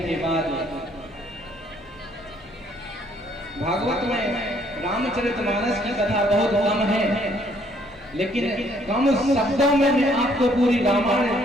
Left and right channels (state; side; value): normal; both; correlation 0.65